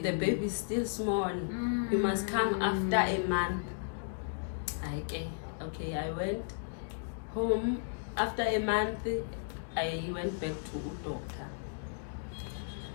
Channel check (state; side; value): silent; right; digital silence